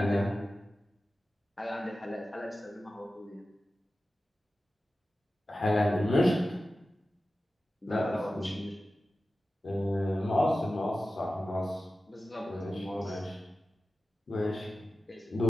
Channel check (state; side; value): normal; both; correlation 0.94